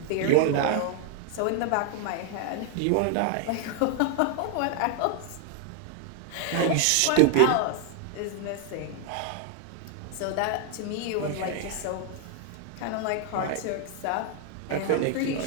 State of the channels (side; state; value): both; different; correlation 0.00